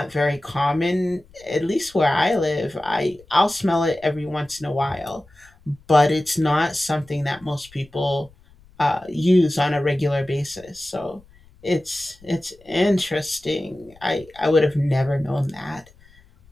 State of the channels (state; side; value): noise; left; rumble, 27 dB below the sound